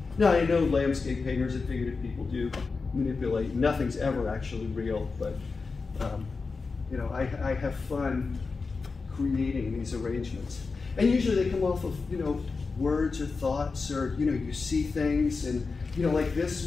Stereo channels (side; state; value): right; quieter; 4.4 dB